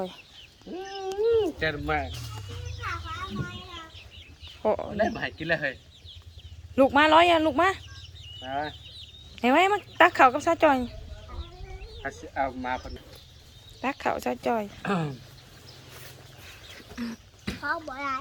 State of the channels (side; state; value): both; identical; correlation 1.00